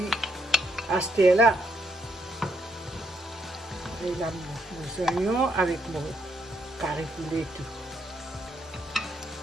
à ce là. Et là, mes oignons avec mon carré poulet et tout.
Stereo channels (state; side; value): normal; both; correlation 0.75